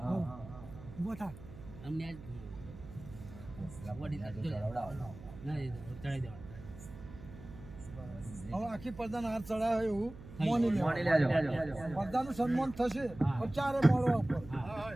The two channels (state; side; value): noise; right; hum, 15 dB below the sound